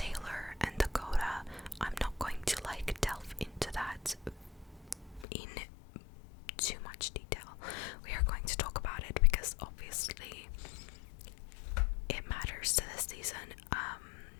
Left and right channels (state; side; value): drops out; right; at 5.2 s